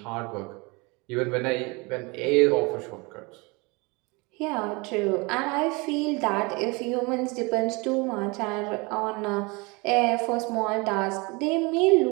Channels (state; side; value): quieter; left; 27.1 dB